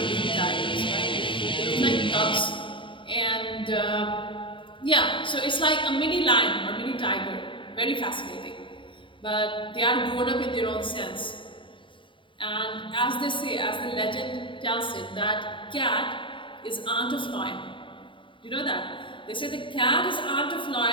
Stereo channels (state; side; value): late; right; 0.24 ms